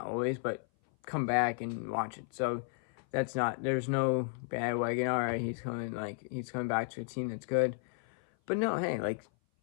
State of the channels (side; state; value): right; silent; 55 dB below the other